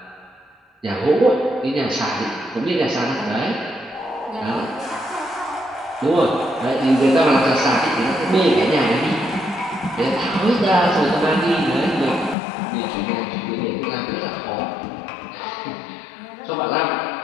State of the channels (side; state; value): right; drops out; at 12.4 s